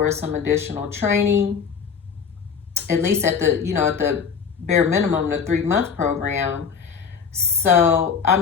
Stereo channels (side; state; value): right; quieter; 6.4 dB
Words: some additional training, at least at the, at the bare minimum, the 3-month program. So, I